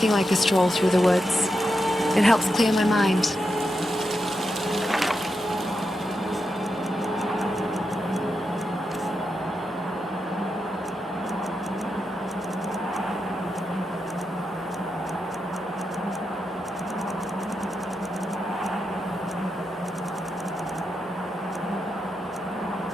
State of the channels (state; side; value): normal; both; correlation 0.86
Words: like a stroll through the woods. It helps clear my mind.